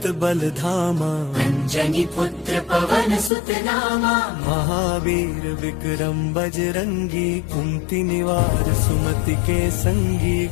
बल धामा, अंजनी पुत्र पवन सुत नामा। महावीर विक्रम बजरंगी, कुंती निवार सुमति के संगी।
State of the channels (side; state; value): right; drops out; at 3.3 s